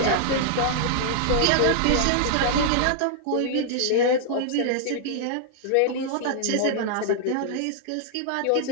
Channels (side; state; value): both; different; correlation -0.01